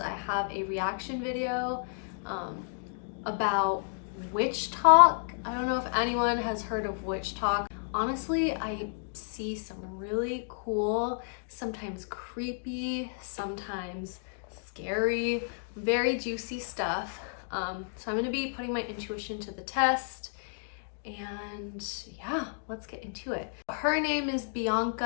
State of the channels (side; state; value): right; silent; digital silence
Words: have a reaction video about WitchTok. I don't know if anyone has heard of WitchTok. Honestly, I see some really cool, sometimes creepy, sometimes scary, very juicy stuff. So I'm gonna be putting my intuition to the test, and yeah, let's get into it. Her name is